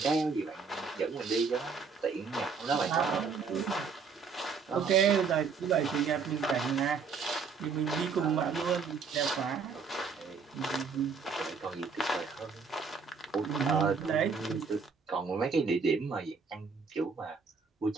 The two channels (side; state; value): left; quieter; 5.3 dB